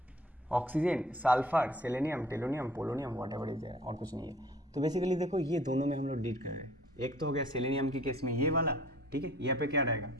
Oxygen, sulphur, selenium, tellurium, polonium, whatever is there, और कुछ नहीं है। तो बेसिकली देखो ये दोनों में हम लोग डील कर रहे हैं। एक तो हो गया सेलेनियम के केस में ये वाला, ठीक है, यहाँ पे क्या रहेगा,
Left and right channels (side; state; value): both; normal; correlation 0.52